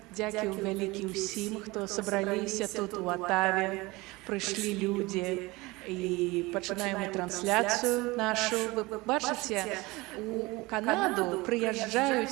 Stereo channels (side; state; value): left; quieter; 22.3 dB